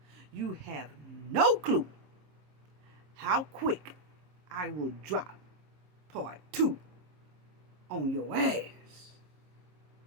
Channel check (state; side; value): late; left; 27 ms